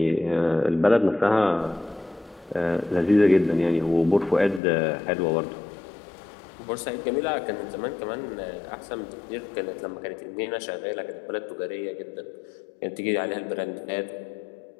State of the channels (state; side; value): drops out; right; at 4.6 s